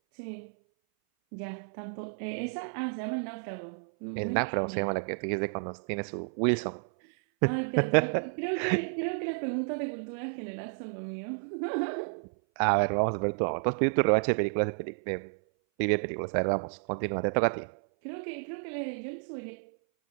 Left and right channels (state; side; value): silent; left; 57 dB below the other